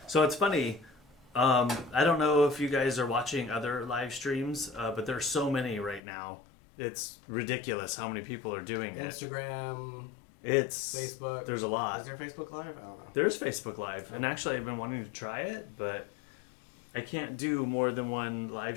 So it's funny. I don't know if you guys are watching other live streams, but there's so many right now. It's ridiculous how many people are doing it. Instagram. It's Facebook. There's a lot. Is there Facebook Live? I don't know. There's Facebook Live, and actually I've been wanting to try it, but I can't do more than one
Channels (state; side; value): drops out; right; at 6.0 s